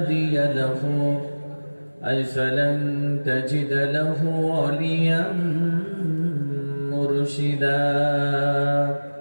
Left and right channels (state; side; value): inverted; both; correlation -1.00